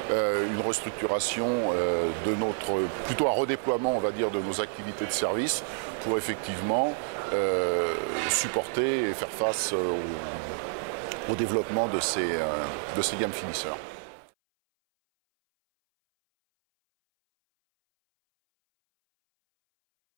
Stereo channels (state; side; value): silent; left; 59 dB below the other